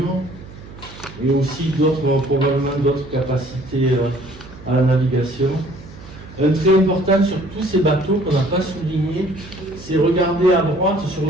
et aussi probablement d'autres capacités à la navigation. Un trait important sur tous ces bateaux qu'on n'a pas souligné, c'est regarder à droite sur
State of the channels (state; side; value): noise; right; hum, 18 dB below the sound